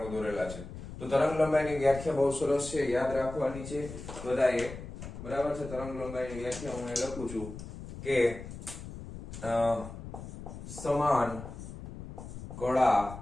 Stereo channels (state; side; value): noise; left; rumble, 11 dB below the sound